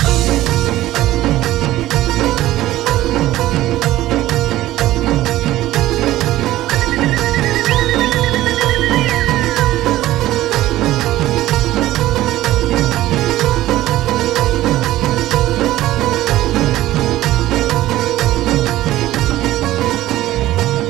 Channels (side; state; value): left; quieter; 15.4 dB